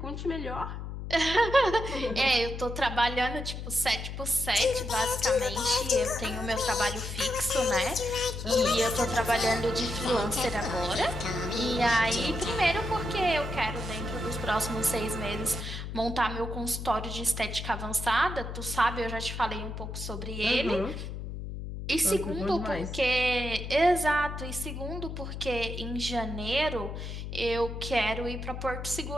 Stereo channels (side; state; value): left; noise; hum, 7 dB below the sound